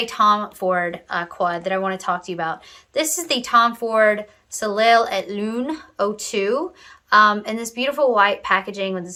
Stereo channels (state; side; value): identical; both; correlation 1.00